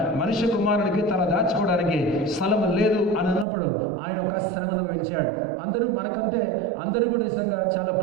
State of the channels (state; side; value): drops out; left; at 3.5 s